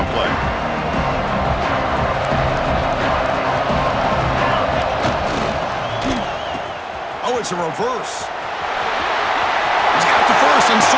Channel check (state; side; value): identical; both; correlation 1.00